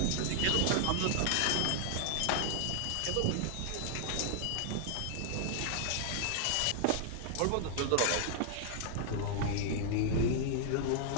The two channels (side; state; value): both; different; correlation 0.00